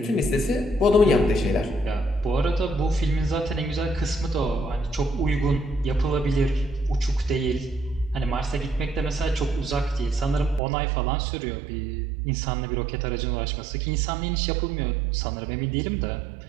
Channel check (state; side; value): drops out; left; at 10.6 s